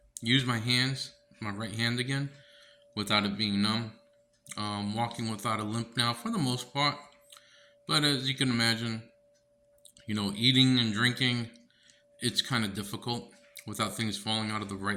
use my hands, my right hand again, without it being numb. Walking without a limp now for the most part. But as you can imagine, eating and drinking, it's kind of difficult without things falling out of the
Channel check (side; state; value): both; identical; correlation 1.00